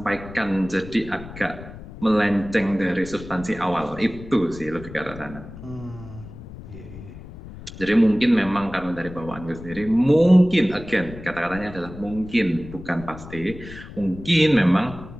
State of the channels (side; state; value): left; noise; rumble, 15 dB below the sound